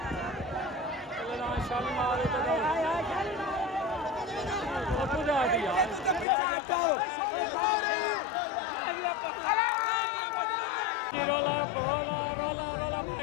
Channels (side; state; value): right; drops out; at 6.2 s